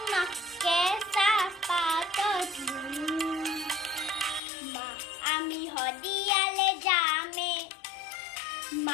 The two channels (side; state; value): right; drops out; at 4.4 s